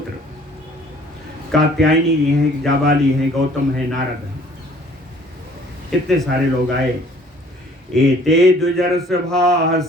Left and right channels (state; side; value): normal; both; correlation 0.55